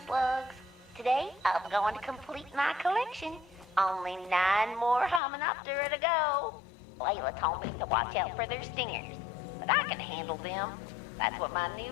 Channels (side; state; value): right; drops out; at 5.2 s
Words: slugs. Today, I'm going to complete my collection. Only 9 more Hymenoptera to go. Layla told me to watch out for their stingers, but I can handle them. That's what my